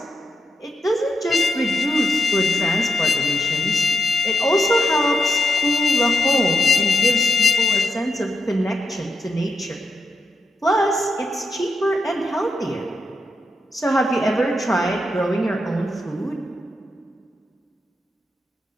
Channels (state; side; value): normal; both; correlation 0.81